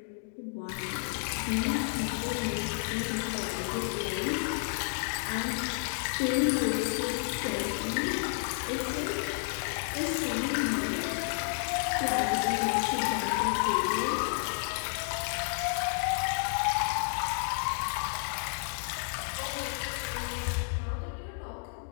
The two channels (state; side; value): silent; right; digital silence